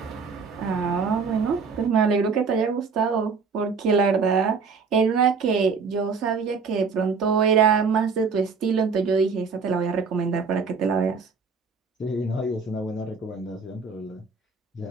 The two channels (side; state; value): left; quieter; 5.2 dB